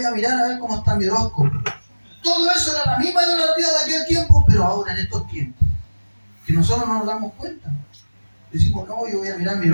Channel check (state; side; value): inverted; both; correlation -1.00